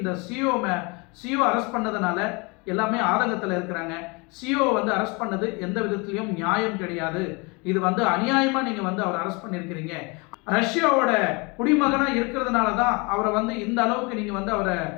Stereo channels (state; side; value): quieter; right; 28.9 dB